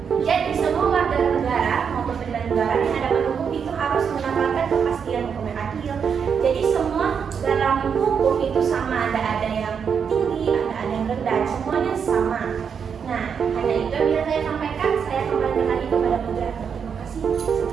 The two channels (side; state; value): left; quieter; 6.8 dB